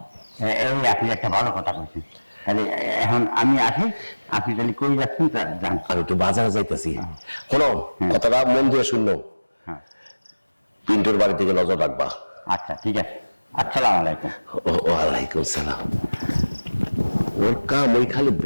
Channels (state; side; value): inverted; both; correlation -1.00